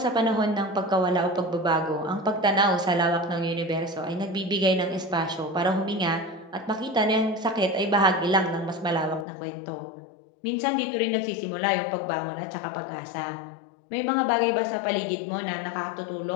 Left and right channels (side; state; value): right; drops out; at 9.2 s